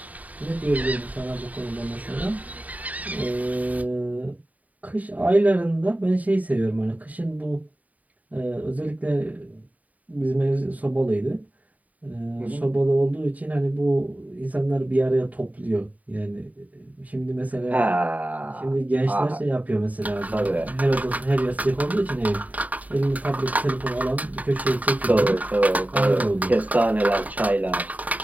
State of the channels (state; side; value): late; left; 0.073 ms